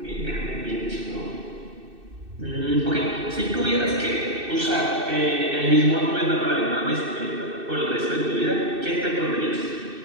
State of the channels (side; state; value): left; late; 2.6 ms